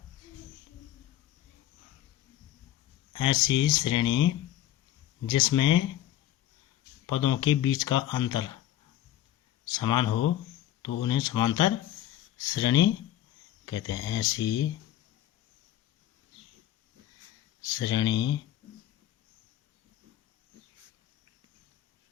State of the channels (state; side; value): quieter; right; 12.7 dB